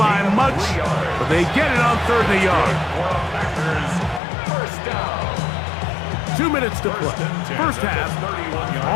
much, but they get it on 3rd and a yard. 2 minutes to play. 1st half,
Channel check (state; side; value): drops out; right; at 4.2 s